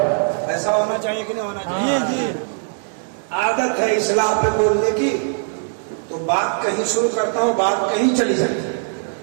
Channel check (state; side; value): silent; left; 63 dB below the other